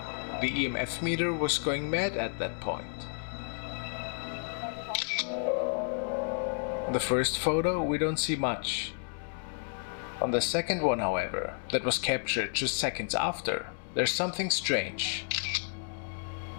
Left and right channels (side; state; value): right; silent; 57 dB below the other